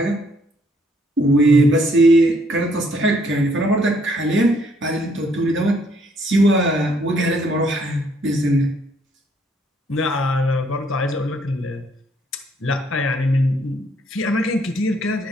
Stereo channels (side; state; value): both; normal; correlation 0.67